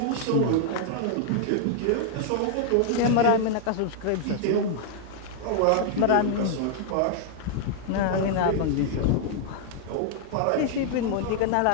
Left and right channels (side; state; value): both; different; correlation 0.00